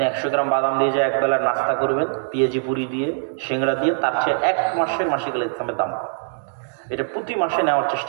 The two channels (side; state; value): left; silent; digital silence